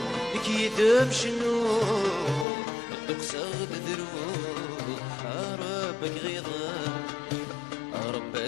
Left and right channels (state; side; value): drops out; right; at 2.5 s